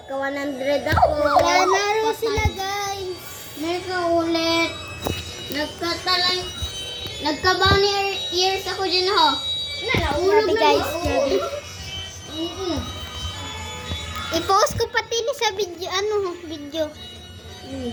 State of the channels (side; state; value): both; identical; correlation 1.00